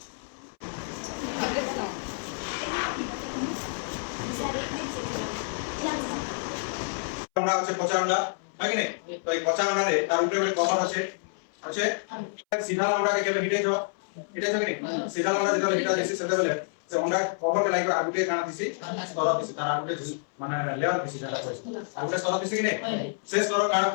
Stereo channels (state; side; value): silent; right; 59 dB below the other